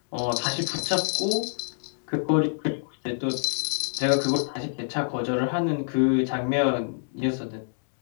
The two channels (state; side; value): silent; right; digital silence